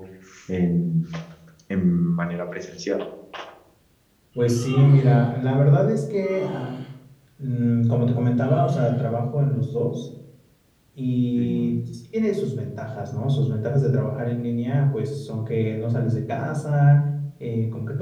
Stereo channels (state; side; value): identical; both; correlation 1.00